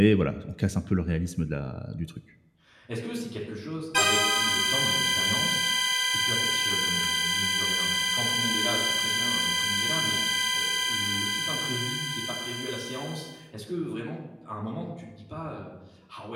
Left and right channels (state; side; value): identical; both; correlation 1.00